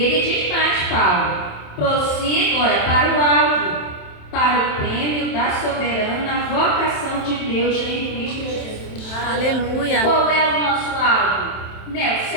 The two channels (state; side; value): late; right; 27 ms